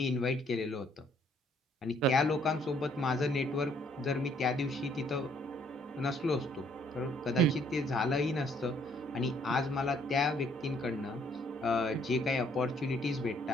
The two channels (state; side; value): normal; both; correlation 0.64